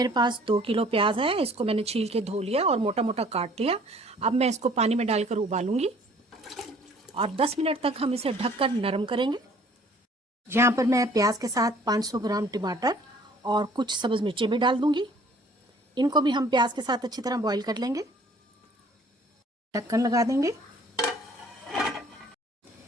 पास 2 किलो प्याज है, इसको मैंने छील के धो लिया और मोटा मोटा काट लिया। अब मैं इसको पानी में डालकर उबालूंगी और 10 मिनट तक हम इसे ढककर नरम करेंगे। यहाँ पर मैं प्याज के साथ 500 ग्राम टमाटर और कुछ सब्ज़ मिर्चें भी डाल दूंगी। इनको भी हम प्याज के साथ अच्छी तरह बॉईल कर लेंगे। ढक्कन लगा देंगे।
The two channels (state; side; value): normal; both; correlation 0.55